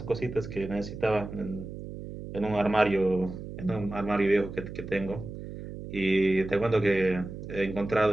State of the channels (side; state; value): right; noise; hum, 10 dB below the sound